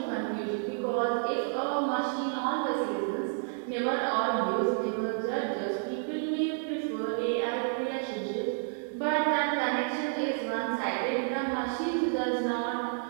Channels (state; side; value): silent; left; digital silence